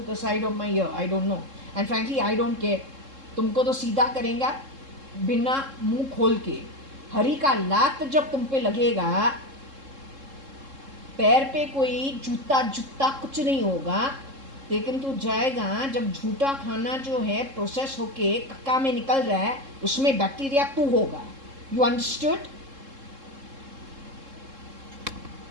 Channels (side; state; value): left; late; 3.7 ms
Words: the side of my ear. I don't know. And frankly, I don't care. तुमको तो सीधा करेंगे बिना मुंह खोल के. हरी का लात जब तुम पे लगेगा, पैर पे कोई जूता कुछ नहीं होगा, लेकिन तू जाएगा जब झूठा खाना जो है प्रोसेस होके कक्का में निकल रहा है, उसमें बैक्टीरिया तू होगा. You understood?